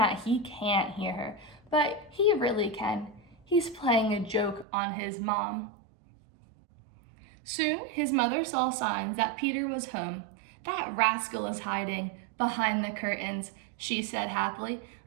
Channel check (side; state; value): left; drops out; at 4.7 s